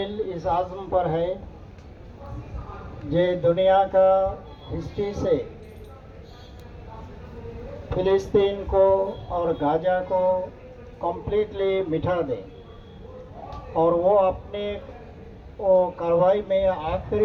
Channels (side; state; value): both; identical; correlation 1.00